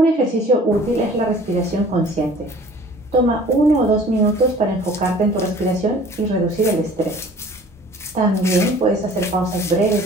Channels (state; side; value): normal; both; correlation 0.49